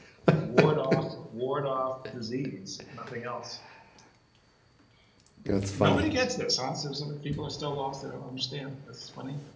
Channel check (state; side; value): identical; both; correlation 1.00